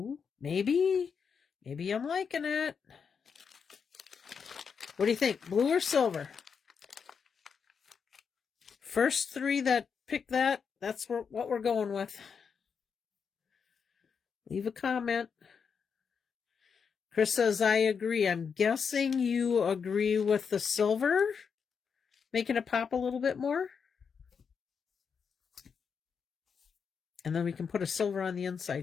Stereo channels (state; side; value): quieter; right; 6.3 dB